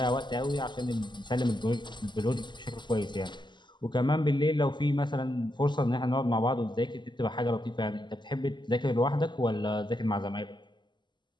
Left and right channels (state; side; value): late; right; 0.22 ms